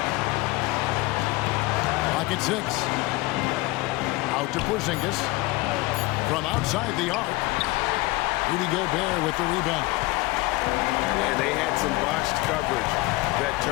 Pocket 6. Out to Porzingis. From outside the arc. Rudy Gobert with the rebound. And they had some botched coverage that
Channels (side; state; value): right; quieter; 21.1 dB